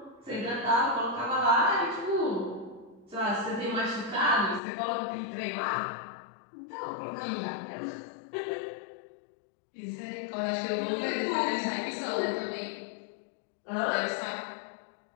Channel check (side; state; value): right; drops out; at 4.6 s